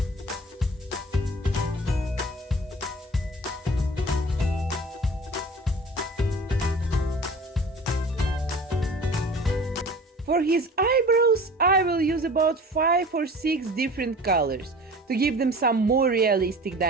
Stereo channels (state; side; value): normal; both; correlation 0.42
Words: For his eyebrows, I will use about 5 or 6 different colors to give them some more realistic